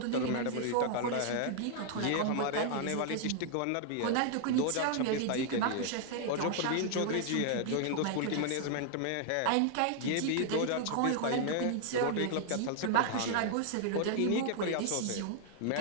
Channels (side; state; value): both; different; correlation 0.00